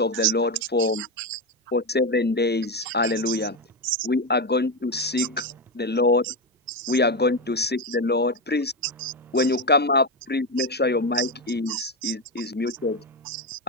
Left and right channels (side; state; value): both; normal; correlation 0.12